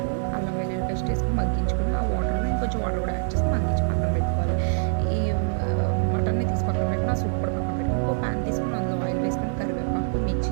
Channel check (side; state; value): left; silent; digital silence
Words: అల్లం వెల్లుల్లి పేస్ట్ వేసుకొని మగ్గించుకొని ఆ వాటర్లో ఇంకొంచెం వాటర్ కూడా యాడ్ చేసి మగ్గించి పక్కన పెట్టుకోవాలి. ఈ మటన్ని తీసి పక్కన పెట్టుకుని ఆ సూప్ కూడా పక్కన పెట్టుకుని ఇంకో ప్యాన్ తీసుకుని అందులో ఆయిల్ వేసుకొని కరివేపాకు,